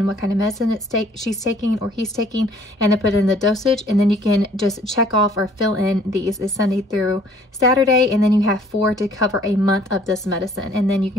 what kind of medicine she's taking or he's taking, and then put in the dosage. And then you can just check off or fill in these. It's Sunday through Saturday. And then you have 4 to cover a month of this medicine. And then you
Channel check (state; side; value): normal; both; correlation 0.58